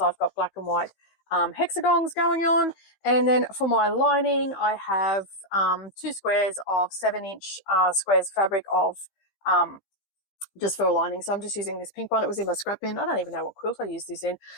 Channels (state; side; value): late; right; 15 ms